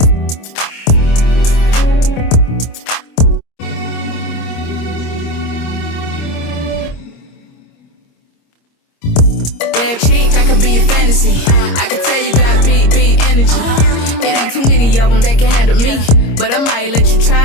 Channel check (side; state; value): right; late; 26 ms